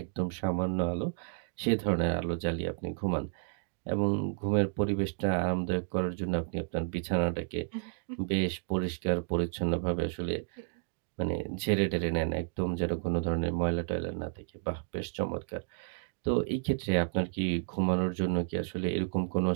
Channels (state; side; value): silent; left; digital silence